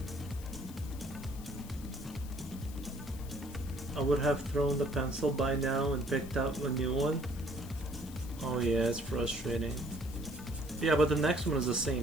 I would have thrown the pencil by now and picked up a new one. Oh yeah, it's frustrating. Yeah, but the next one is the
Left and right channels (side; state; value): left; noise; hiss, 18 dB below the sound